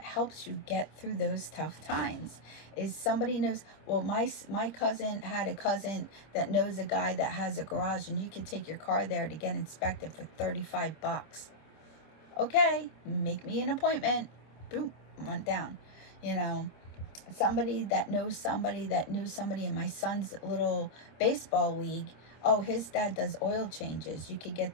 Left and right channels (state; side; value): late; right; 26 ms